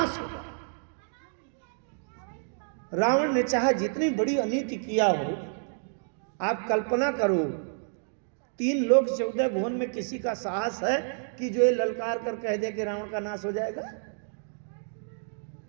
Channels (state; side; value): silent; left; digital silence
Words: होगा। रावण ने चाहे जितनी बड़ी अनीति किया हो, आप कल्पना करो, 3 लोक 14 भुवन में किसी का साहस है कि जो ये ललकार कर कह दे कि रावण का नाश हो जाएगा?